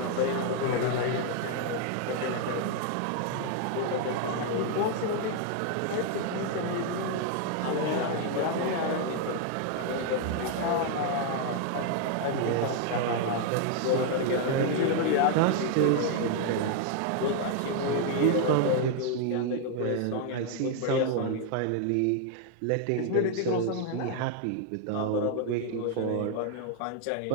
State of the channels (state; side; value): different; both; correlation 0.00